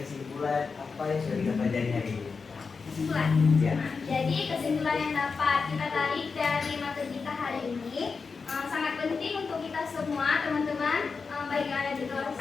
apa yang sudah kita pelajari hari ini. Kesimpulan. Ya. Jadi kesimpulan yang dapat kita tarik dari materi kita hari ini sangat penting untuk kita semua teman-teman baik yang ada di kelas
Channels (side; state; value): right; quieter; 4.9 dB